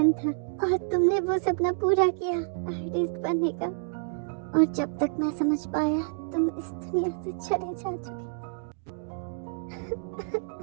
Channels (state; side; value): silent; left; digital silence